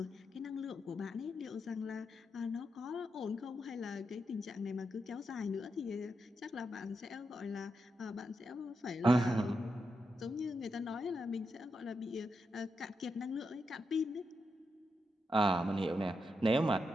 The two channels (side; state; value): both; normal; correlation 0.85